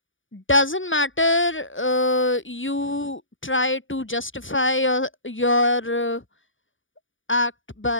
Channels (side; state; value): right; late; 0.57 ms